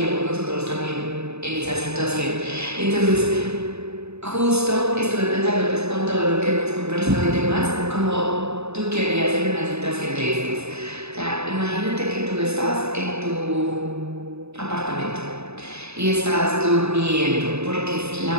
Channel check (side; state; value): left; late; 0.80 ms